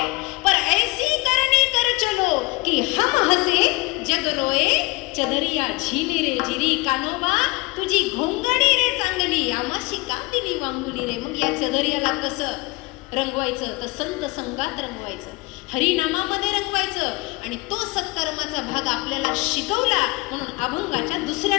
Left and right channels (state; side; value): quieter; right; 24.2 dB